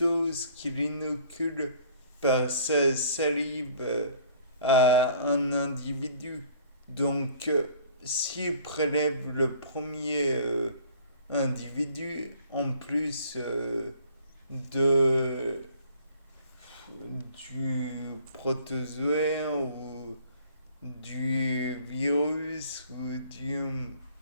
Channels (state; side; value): inverted; both; correlation -0.54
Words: ce qu'il inocule par sa salive à un individu. Donc, s'il prélève le premier individu, en plus de, du protozoaire ou du virus ou